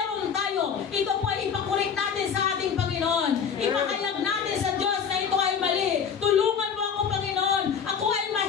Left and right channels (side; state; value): right; quieter; 7.0 dB